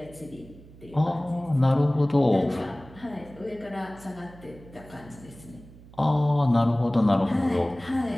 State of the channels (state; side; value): noise; right; hum, 21 dB below the sound